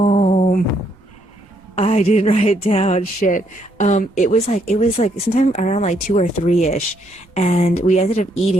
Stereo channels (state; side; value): noise; right; rumble, 30 dB below the sound